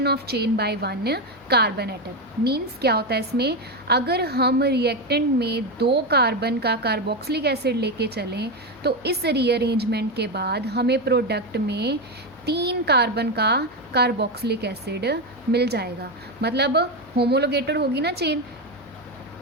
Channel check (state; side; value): noise; left; hum, 27 dB below the sound